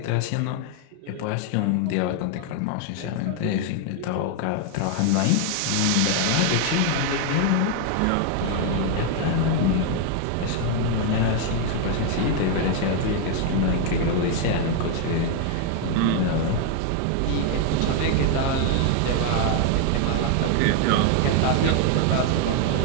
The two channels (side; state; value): both; different; correlation 0.00